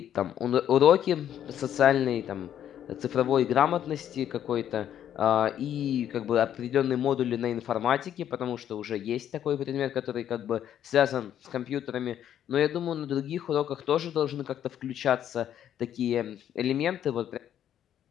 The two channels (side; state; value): right; quieter; 10.3 dB